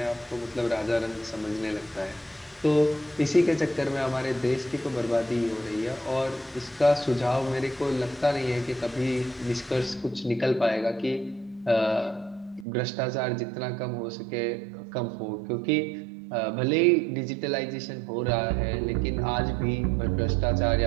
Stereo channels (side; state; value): left; drops out; at 12.7 s